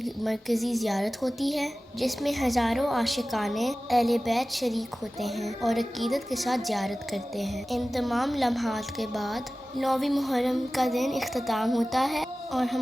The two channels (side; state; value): both; normal; correlation 0.97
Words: مرکزی زیارت ہوتی ہے، جس میں ہزاروں عاشقان اہل بیت شریک ہوتے ہیں اور عقیدت کے ساتھ زیارت کرتے ہیں. ان تمام لمحات کے بعد 9 محرم کا دن اختتام ہوتا ہے اور